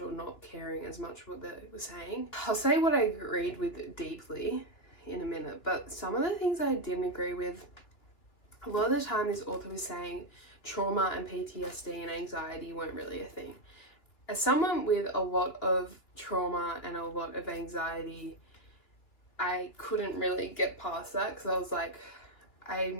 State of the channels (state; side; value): late; right; 3.0 ms